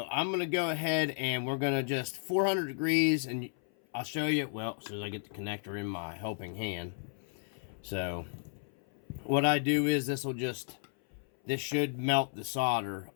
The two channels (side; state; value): right; silent; 56 dB below the other